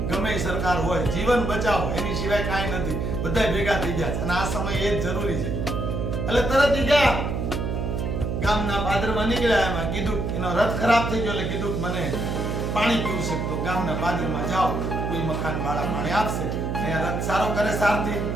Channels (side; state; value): right; noise; hum, 2 dB below the sound